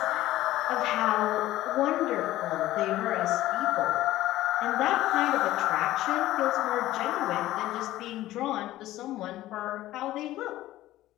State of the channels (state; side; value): quieter; right; 15.3 dB